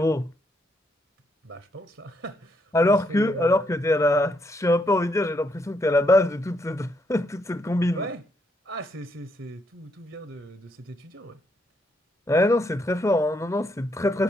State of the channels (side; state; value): both; normal; correlation 0.76